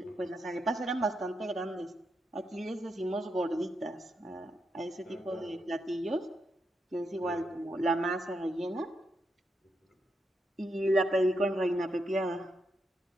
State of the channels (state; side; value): normal; both; correlation 0.82